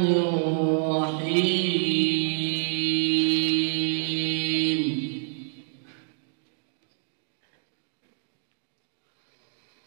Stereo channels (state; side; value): silent; left; digital silence